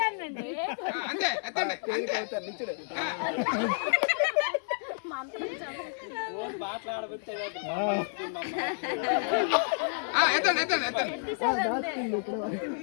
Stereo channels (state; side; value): silent; right; 58 dB below the other